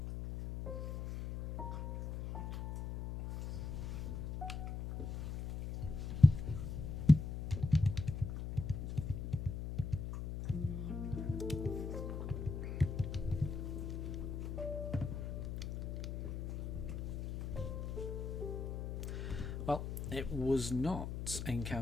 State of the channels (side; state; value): left; noise; hum, 4 dB below the sound